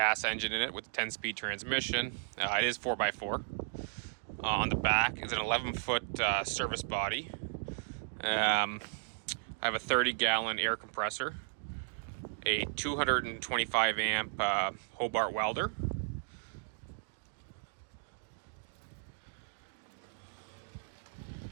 engine in it with a 10-speed transmission. It is 4x4. On the back is an 11-foot service body. I have a 30-gallon air compressor, a 225 amp Hobart welder,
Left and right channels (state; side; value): silent; left; digital silence